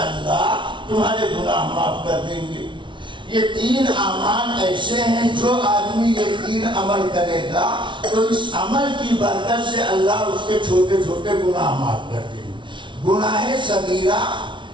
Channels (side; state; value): left; late; 0.24 ms